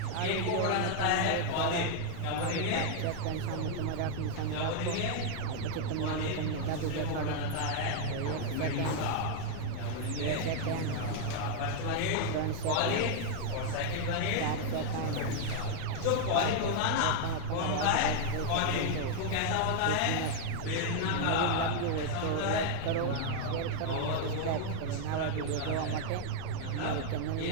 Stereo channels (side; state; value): both; different; correlation 0.00